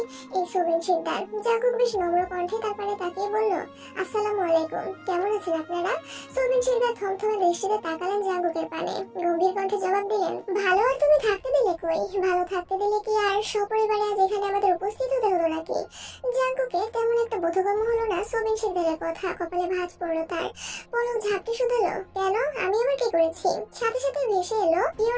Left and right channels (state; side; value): identical; both; correlation 1.00